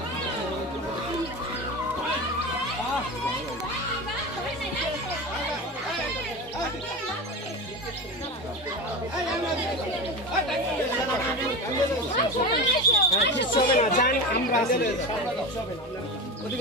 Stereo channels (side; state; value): both; normal; correlation 0.25